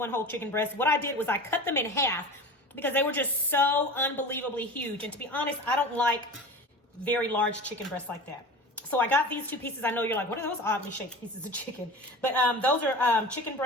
whole chicken breast. What I did was I cut them in half because they were just so unbelievably huge. And to be honest, I don't like very large chicken breasts like that. So I got these two pieces. I know you're like, what are those oddly shaped pieces of chicken? But those are chicken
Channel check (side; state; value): both; normal; correlation 0.34